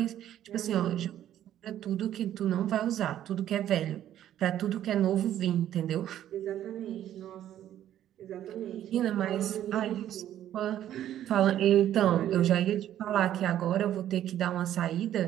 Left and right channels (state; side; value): quieter; left; 11.6 dB